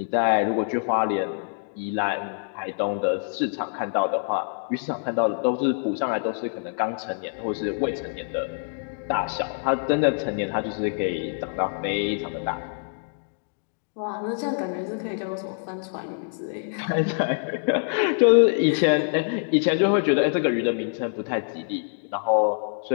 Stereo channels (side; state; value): right; silent; digital silence